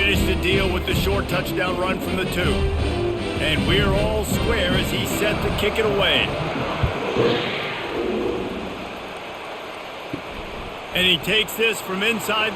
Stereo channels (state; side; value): identical; both; correlation 1.00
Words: the deal with the short touchdown run from the 2. And we're all square as he's set to kick it away. And he takes this from inside